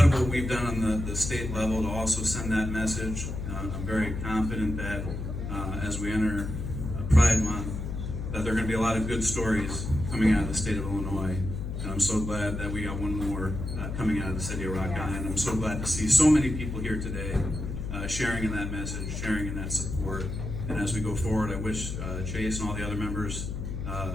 of what we've done on the state level to also send that message. I'm very confident that as we enter Pride Month, that there are going to be a lot of good stories coming out of the state of Illinois. And I'm so glad that we got one more coming out of the city of Rock Island. I'm so glad to see so many people here today sharing in that message, sharing in that support. And as we go forward, I wish Chase and all the other members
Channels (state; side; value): noise; left; hum, 5 dB below the sound